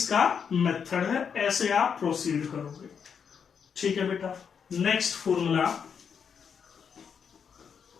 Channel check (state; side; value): quieter; right; 6.9 dB